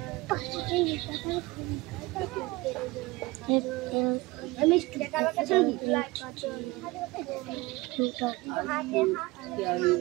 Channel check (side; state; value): left; quieter; 22.1 dB